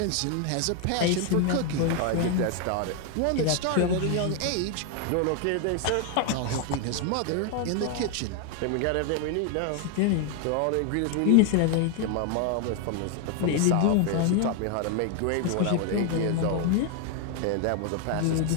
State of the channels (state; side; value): different; both; correlation 0.01